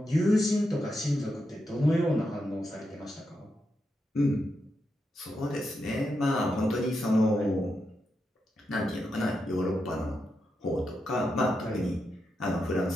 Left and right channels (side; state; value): both; normal; correlation 0.85